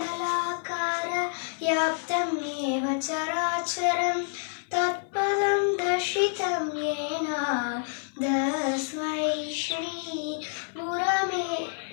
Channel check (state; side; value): silent; right; digital silence